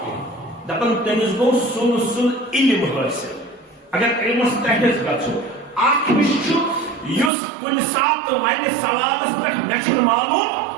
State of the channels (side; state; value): left; drops out; at 7.3 s